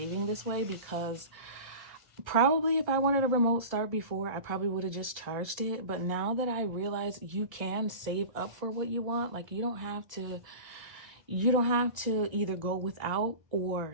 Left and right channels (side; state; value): left; late; 1.9 ms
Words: this way, because probably if I wanted a remote start before, I probably would have just charged it. But now that I realize you can save up for what you want, like you don't have to either go without